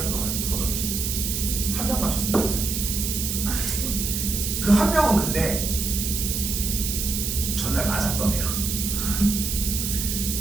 동안 해서 풀어줬지. 1명 맞췄습니다. 그 1명은 근데 전날 맞았던 애야.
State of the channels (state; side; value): noise; right; hiss, 2 dB below the sound